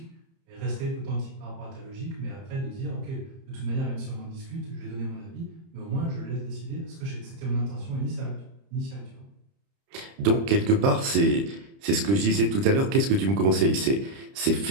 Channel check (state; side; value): late; left; 30 ms